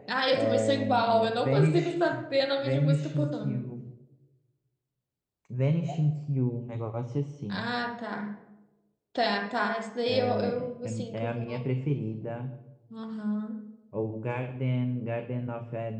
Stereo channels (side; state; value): both; identical; correlation 1.00